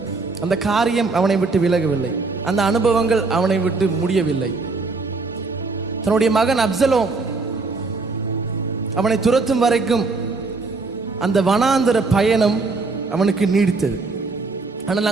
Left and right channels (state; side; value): quieter; left; 3.8 dB